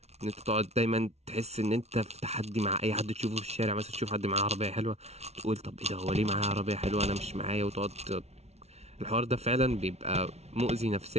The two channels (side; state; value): left; late; 0.31 ms